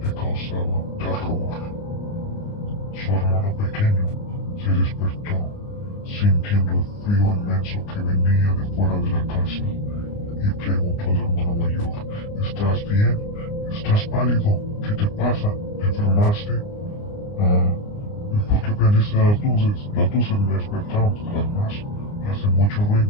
le causaba terror. Su hermano pequeño se despertó, sintiendo el frío inmenso que venía de fuera de la casa, y preguntó al hermano mayor: ¿estás bien? ¿Estás pálido? ¿Qué te pasa? ¿Te enfermaste? ¿Y por qué prendiste las luces? Las luces me despertaron, además hace mucho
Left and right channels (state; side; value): late; right; 29 ms